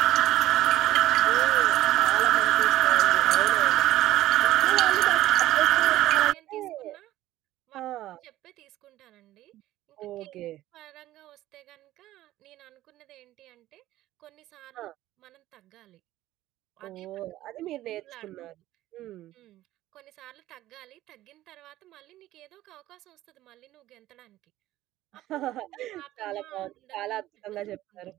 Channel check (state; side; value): quieter; left; 15.0 dB